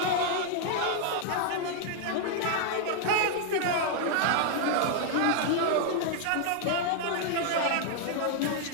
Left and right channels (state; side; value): different; both; correlation 0.00